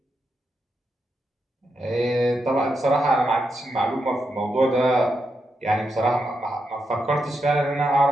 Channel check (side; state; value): both; normal; correlation 0.84